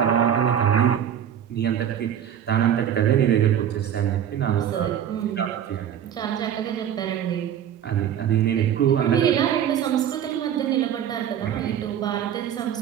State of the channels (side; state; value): left; quieter; 9.6 dB